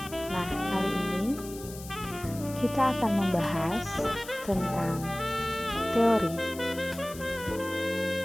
Nah, kali ini kita akan membahas tentang teori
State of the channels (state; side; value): noise; left; hiss, 15 dB below the sound